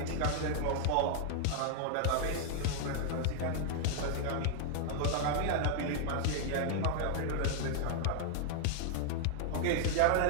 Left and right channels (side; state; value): both; different; correlation 0.00